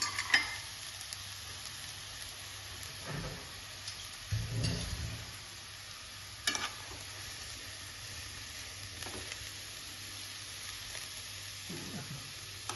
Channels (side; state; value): both; identical; correlation 1.00